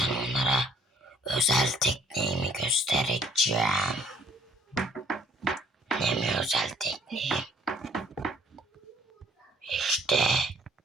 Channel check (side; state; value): both; normal; correlation 0.61